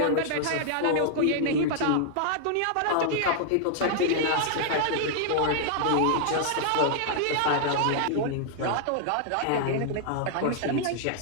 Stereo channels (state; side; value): different; both; correlation -0.01